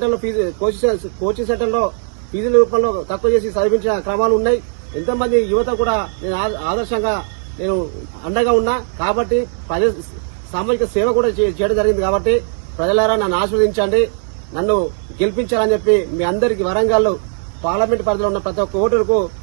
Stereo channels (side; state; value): left; silent; 64 dB below the other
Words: సెంటర్లో ఫీజుల రూపంలో తక్కువ చేసి చదివించిన క్రమాలు ఉన్నాయి. ఎంతో మంది యువత కూడా నేను ఆదర్శంగా నేను అండగా ఉన్నా. కాబట్టి సామాజిక సేవ కూడా చేయడం జరిగింది. కాబట్టి ప్రజలారా నన్ను ఆశీర్వదించండి, నన్ను గెలిపించాలని చెప్పి మీ అందరికీ వరంగల్ పార్లమెంట్ పరిధిలో ఉన్న ప్రతి ఒక్క ఓటరుకు